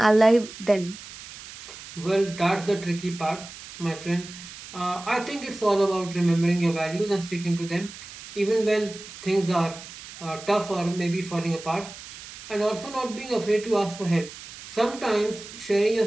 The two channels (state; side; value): noise; right; hiss, 15 dB below the sound